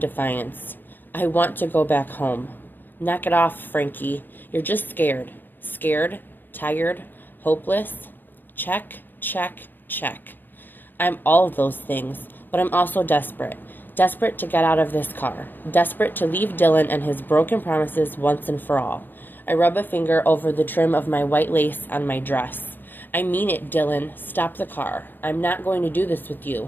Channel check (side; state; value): right; late; 0.092 ms